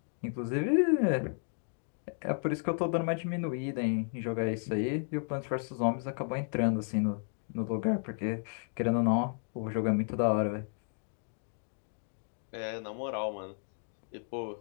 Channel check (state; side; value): silent; right; 56 dB below the other